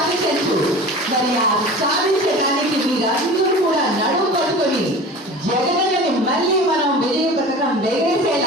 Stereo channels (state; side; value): normal; both; correlation 0.37